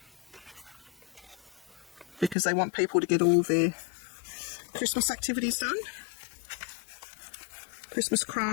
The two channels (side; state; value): right; drops out; at 2.4 s